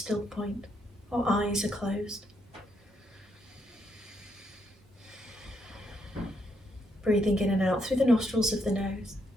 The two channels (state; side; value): normal; both; correlation 0.76